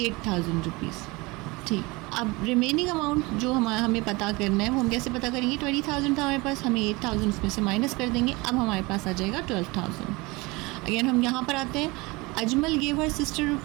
रुपीज़। ठीक, अब रिमेनिंग अमाउंट जो हमें पता करना है वो हम कैसे पता करेंगे। 20,000 था हमारे पास, हमें 8,000 उसमें से माइनस कर देंगे। अब हमारे पास आ जाएगा 12,000। अगेन हम यहाँ पर आते हैं। Ajmal gave her sister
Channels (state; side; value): quieter; left; 24.1 dB